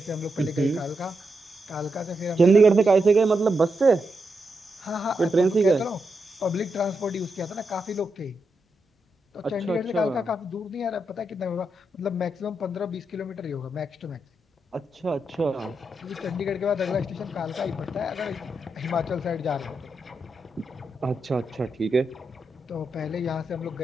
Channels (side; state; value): both; normal; correlation 0.85